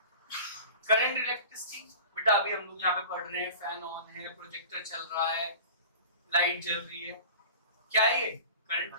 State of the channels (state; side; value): inverted; both; correlation -0.38